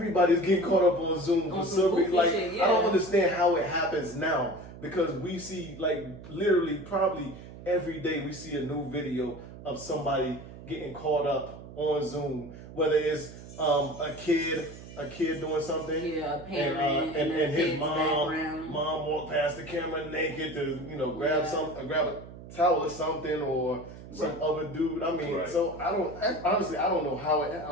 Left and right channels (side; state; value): right; noise; hum, 15 dB below the sound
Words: getting caught up on Zoom for some reason. Like, shit, yeah. I don't understand how it happens now, because we see, like, literally probably every day we see a new video of somebody getting caught up on Zoom, whether it's a kid doing something, a parent, and his mom walked past the camera naked to grab a towel or something, or some other dude. I mean, so I don't know how